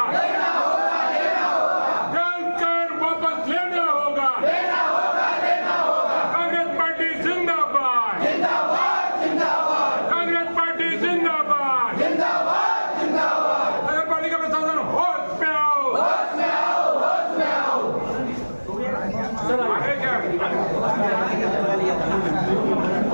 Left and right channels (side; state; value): both; inverted; correlation -1.00